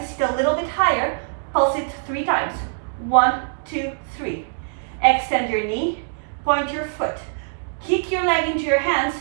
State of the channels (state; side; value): silent; left; digital silence